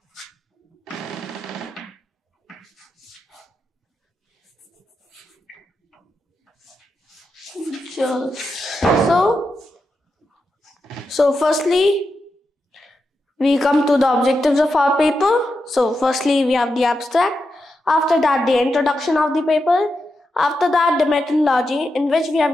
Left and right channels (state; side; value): normal; both; correlation 0.87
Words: So firstly, we come to the objectives of our paper. So firstly, we have the abstract. After that, the introduction of the paper. After that, the methodology in which we